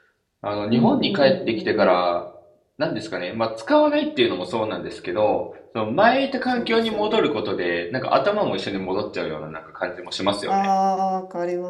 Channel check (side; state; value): both; identical; correlation 1.00